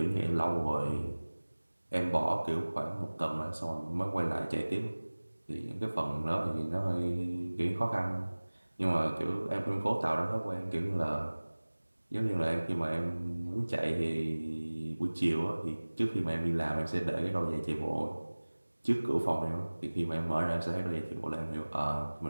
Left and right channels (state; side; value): inverted; both; correlation -1.00